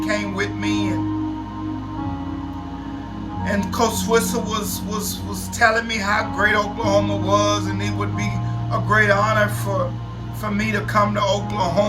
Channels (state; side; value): identical; both; correlation 1.00